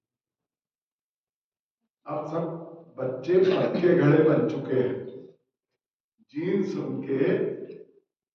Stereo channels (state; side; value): identical; both; correlation 1.00